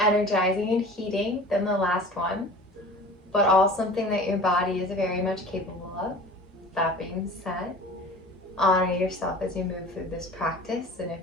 and heating than the last one, but all something that your body is very much capable of. That being said, honor yourself as you move through this practice, and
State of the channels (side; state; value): both; normal; correlation 0.41